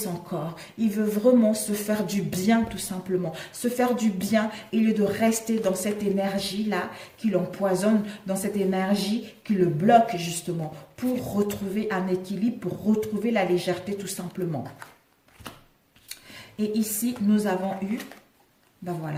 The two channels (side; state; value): both; identical; correlation 1.00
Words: corps, il veut vraiment se faire du bien tout simplement, se faire du bien au lieu de rester dans cette énergie-là qui l'empoisonne, dans cette énergie qui le bloque justement, pour retrouver un équilibre, pour retrouver la légèreté tout simplement. Et ici, nous avons eu, ben